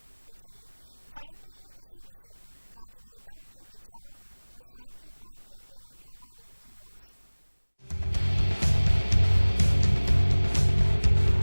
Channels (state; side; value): inverted; both; correlation -1.00